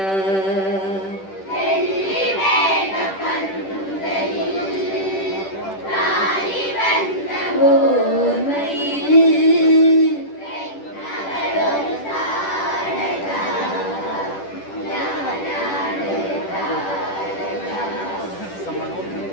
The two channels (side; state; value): right; late; 10 ms